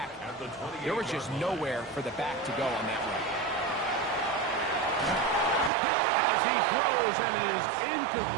there was just nowhere for the back to go on that run. As he throws, and it is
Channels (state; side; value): drops out; left; at 5.7 s